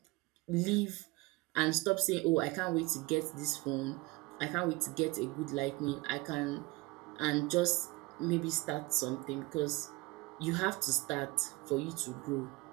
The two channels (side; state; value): left; quieter; 23.3 dB